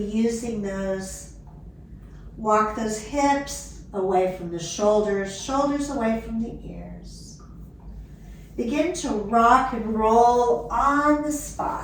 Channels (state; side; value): identical; both; correlation 1.00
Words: those. Walk those hips away from the shoulders, shoulders away from the ears. Begin to rock and roll on the